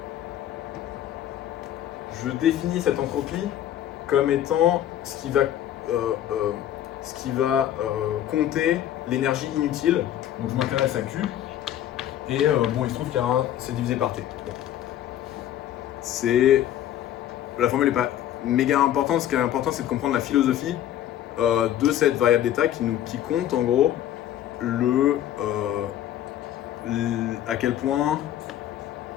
je définis cette entropie comme étant ce qui va compter l'énergie inutile. Donc je m'intéresse à Q, et bon, il se trouve qu'il y a c'est divisé par T. La formule n'est pas méga importante. Ce qui est important, c'est de comprendre la philosophie de cette variable d'état qui compte en gros à quel point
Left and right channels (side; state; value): right; quieter; 11.6 dB